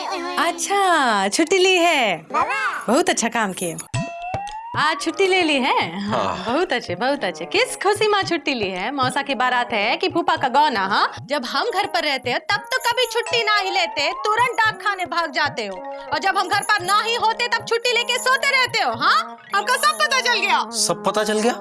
अच्छा, छुट्टी ली है, बहुत अच्छा काम किए। आज छुट्टी ले ली है? हाँ, बहुत अच्छे बहुत अच्छे। किस खुशी में छुट्टी ली है? मौसा की बारात है कि फूफा का गौना? हाँ, जब हम घर पर रहते हैं तब तो कभी छुट्टी ना ही लेते, तुरंत डाक खाने भाग जाते हो, और जब हम घर पर ना ही होते तब छुट्टी लेके सोते रहते हो। हाँ, हमको सब पता चल गया। सब पता चल गया?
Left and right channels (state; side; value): identical; both; correlation 1.00